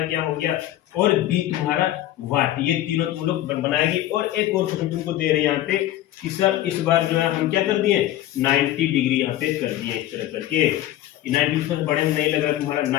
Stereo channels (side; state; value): right; quieter; 13.8 dB